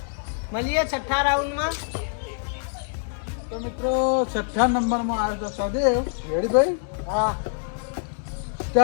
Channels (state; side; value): silent; right; digital silence